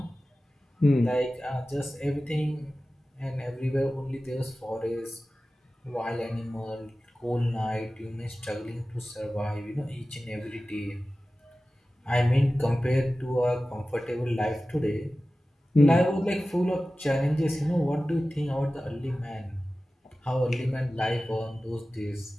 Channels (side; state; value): both; normal; correlation 0.96